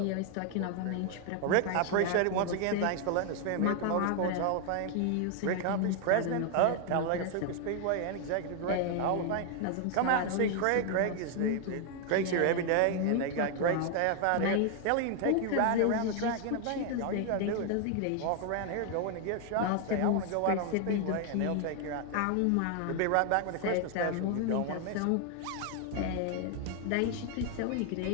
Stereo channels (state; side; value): different; both; correlation 0.00